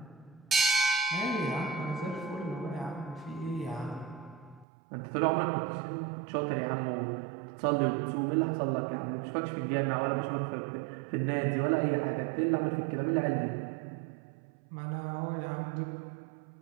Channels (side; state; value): left; drops out; at 4.7 s